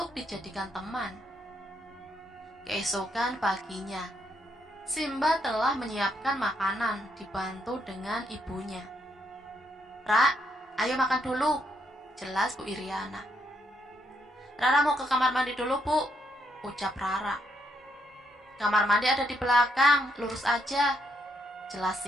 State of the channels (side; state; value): both; normal; correlation 0.76